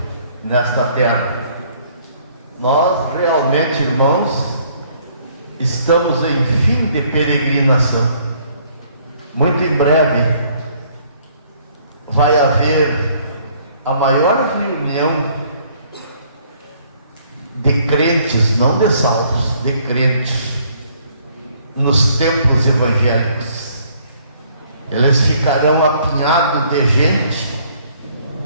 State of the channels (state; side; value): inverted; both; correlation -0.63